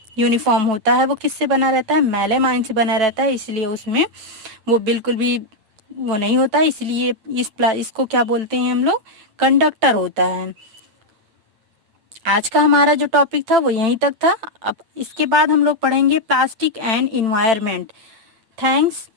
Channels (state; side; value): late; left; 8.8 ms